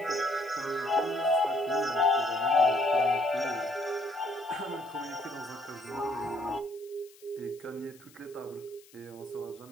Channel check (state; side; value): noise; left; hiss, 25 dB below the sound